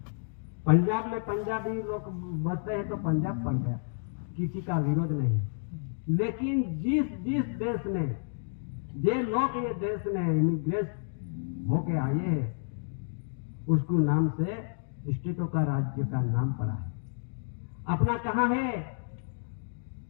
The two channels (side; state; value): right; silent; digital silence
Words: पंजाब में पंजाबी लोग बसते हैं तो पंजाब पड़ गया। किसी का विरोध नहीं, लेकिन जिस देश में जे लोग ये देश में इमिग्रेट होके आए हैं, उसको नाम से स्टेटों का राज्य का नाम पड़ा है। अपना कहाँ है?